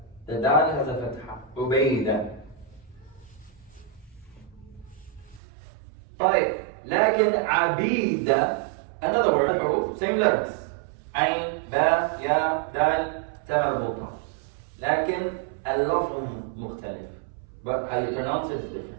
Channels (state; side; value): drops out; left; at 5.4 s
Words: dal هذا فتحة. عبيدة. طيب لكن عبيدة, another word, حروف, same letters. عين باء ياء دال تاء مربوطة لكن اللفظ مختلف. But how you pronounce it is